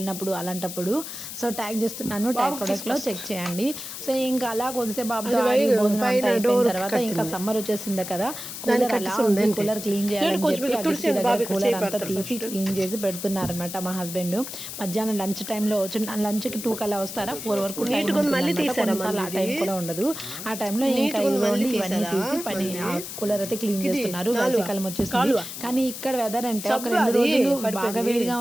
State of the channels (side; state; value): left; noise; hiss, 9 dB below the sound